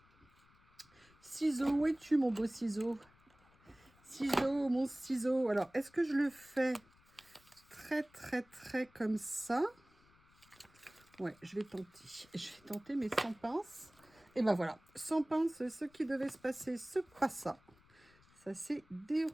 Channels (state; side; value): noise; left; rumble, 29 dB below the sound